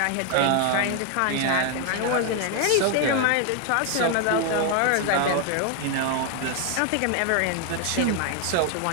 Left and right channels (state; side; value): different; both; correlation 0.01